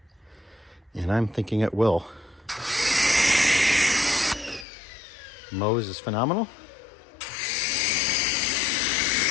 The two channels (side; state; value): right; drops out; at 4.7 s